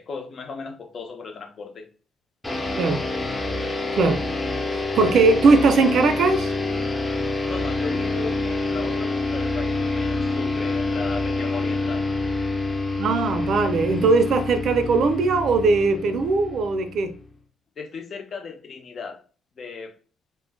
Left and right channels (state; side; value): normal; both; correlation 0.70